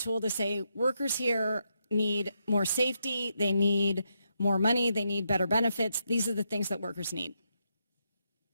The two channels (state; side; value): inverted; both; correlation -0.81